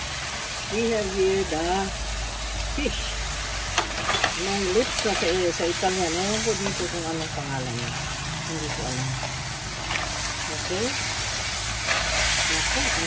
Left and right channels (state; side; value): identical; both; correlation 1.00